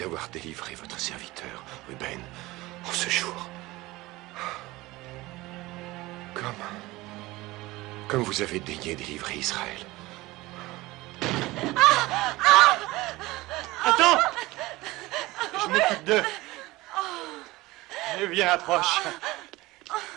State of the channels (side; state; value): left; quieter; 19.9 dB